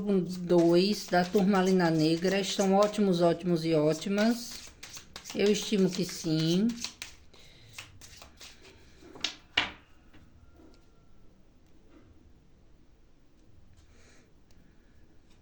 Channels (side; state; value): both; identical; correlation 1.00